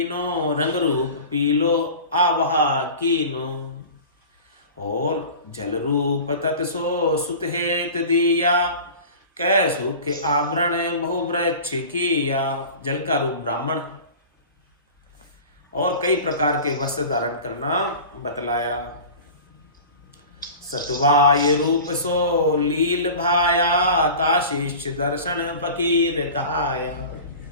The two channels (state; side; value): inverted; both; correlation -0.37